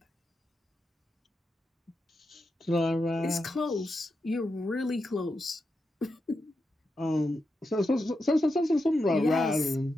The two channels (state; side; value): normal; both; correlation 0.87